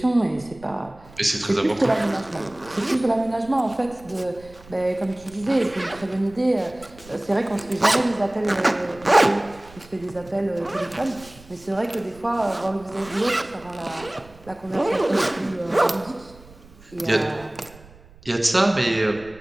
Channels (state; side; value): noise; right; rumble, 22 dB below the sound